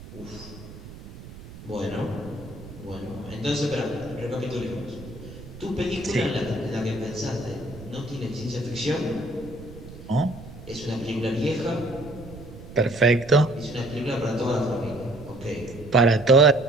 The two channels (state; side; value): noise; right; rumble, 15 dB below the sound